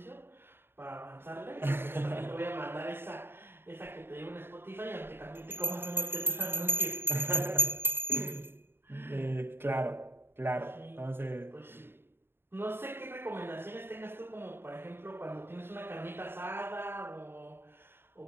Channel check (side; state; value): left; late; 0.11 ms